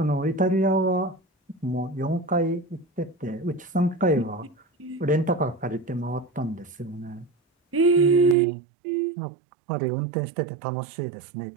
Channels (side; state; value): left; drops out; at 8.3 s